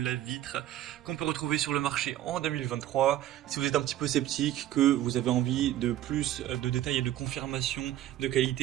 qu'on peut retrouver sur le marché en 2023. Si vous êtes un petit peu sceptique, que vous avez envie de plus de détails et de confirmation de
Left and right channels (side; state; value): left; quieter; 13.1 dB